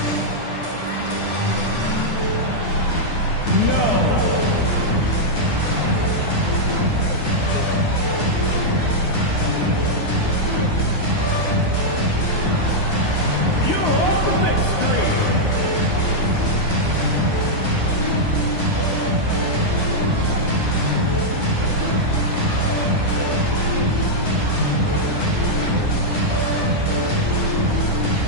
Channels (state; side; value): late; right; 9.8 ms